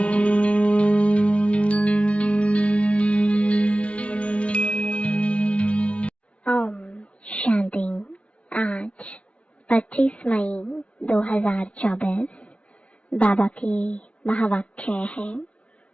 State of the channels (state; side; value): late; right; 0.062 ms